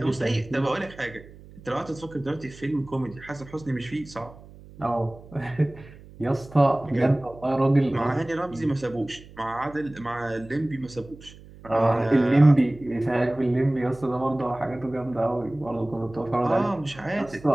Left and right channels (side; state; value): right; noise; hum, 20 dB below the sound